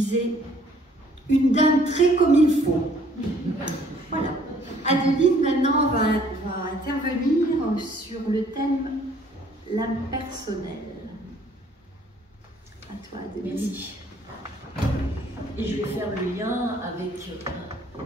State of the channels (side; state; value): both; normal; correlation 0.60